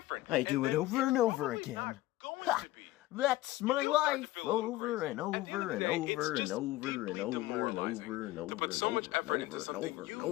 I do it over and over again. Ha! That's my do start to life, feel a little over crazy. and At the over end and of the day, over it's and just over and deeply over and demoralizing over and to over put so and much over effort and into over something and you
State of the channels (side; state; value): right; quieter; 17.4 dB